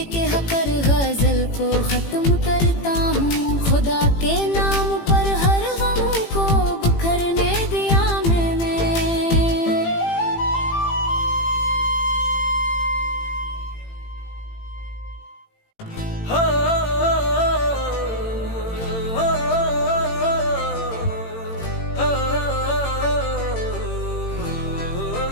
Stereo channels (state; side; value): late; right; 18 ms